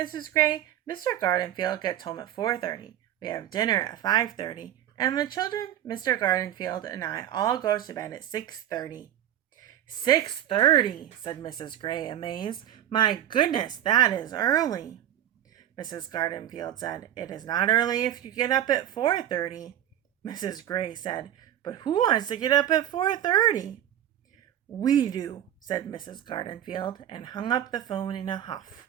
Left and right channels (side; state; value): left; quieter; 11.4 dB